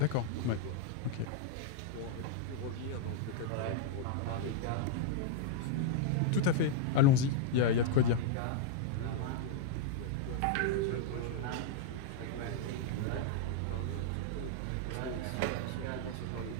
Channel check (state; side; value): different; both; correlation 0.00